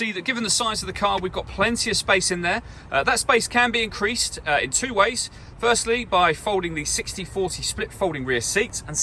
that given the size of the car, we've got plenty of space in there. That space can be increased in two ways. Firstly, by folding the 60/40 split folding rear seat, and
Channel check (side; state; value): both; identical; correlation 1.00